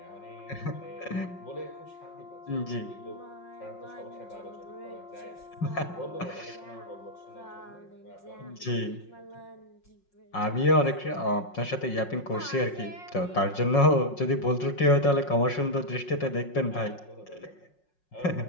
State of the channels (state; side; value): late; right; 5.5 ms